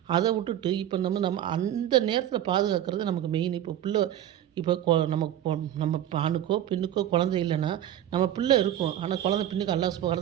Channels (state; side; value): quieter; left; 11.6 dB